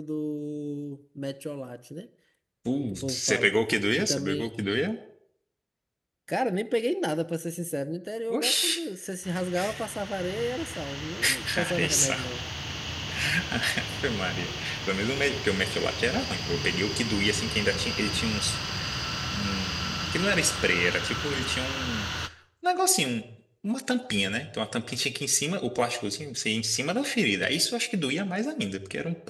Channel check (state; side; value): identical; both; correlation 1.00